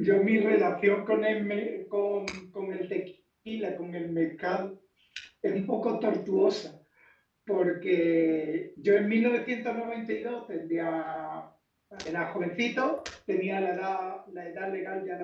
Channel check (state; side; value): identical; both; correlation 1.00